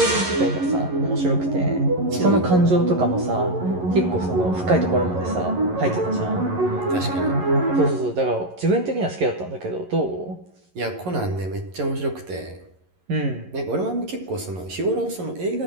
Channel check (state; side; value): late; left; 11 ms